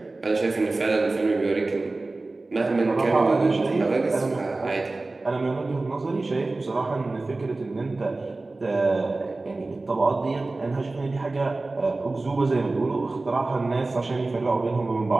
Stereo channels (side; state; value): left; quieter; 3.3 dB